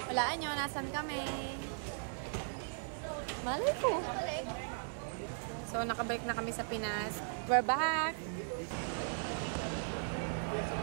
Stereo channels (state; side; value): silent; left; digital silence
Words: Walaan nyo, nasan kami? Malay ko. So, nakabalik na kami sa Pinas. We're back!